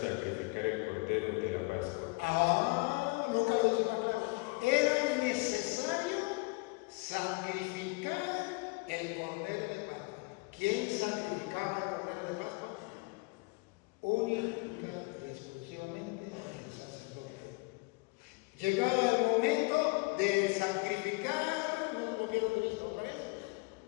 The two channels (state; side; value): quieter; right; 28.1 dB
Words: el cordero de la Pascua. Nunca lo dice más claro. Era necesario sacrificar el cordero de Pascua. ¿Quién sacrificaba el cordero de Pascua? Única y exclusivamente el sacerdote. Llegaba el momento de sacrificar, no pierdo de vista otra vez.